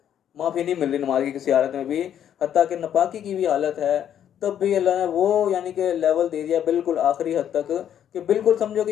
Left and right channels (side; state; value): right; quieter; 9.8 dB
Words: माफ़ी नहीं मिल रही नमाज की किसी हालत में भी, हत्ता कि नपाकी की भी हालत है तब भी अल्लाह ने वो यानी कि लेवल दे दिया बिल्कुल आखिरी हद तक कि बिल्कुल समझो